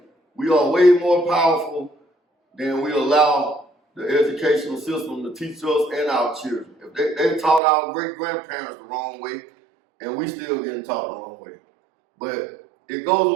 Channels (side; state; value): left; drops out; at 7.6 s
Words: We are way more powerful than we allow the educational system to teach us and our children. If they taught our great-grandparents the wrong way, and we still getting taught the wrong way. But it goes a